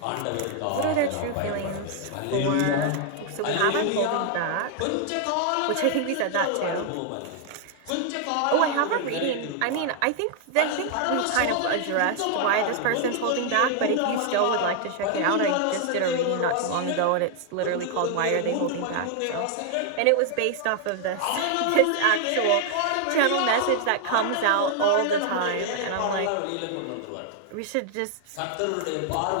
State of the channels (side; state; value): both; different; correlation 0.00